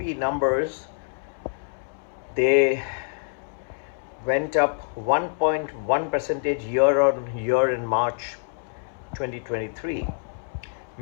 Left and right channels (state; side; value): silent; right; 61 dB below the other